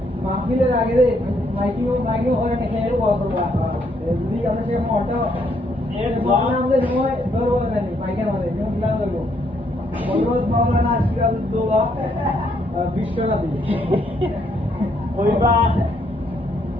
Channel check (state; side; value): normal; both; correlation 0.72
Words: মাহফিলের আগে রে মাইকিং হয় না খেয়ে বড় করবা যদি আমরা সে মোটা এর বানা আমাদের সময় ধরবো না মাইকের মধ্যে নিউ প্ল্যান করব বলরোজ মাওলানা সিরাজউদ্দৌলা বিশ্বনাথী কইবা